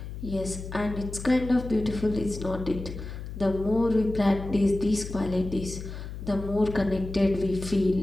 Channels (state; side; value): noise; left; hum, 9 dB below the sound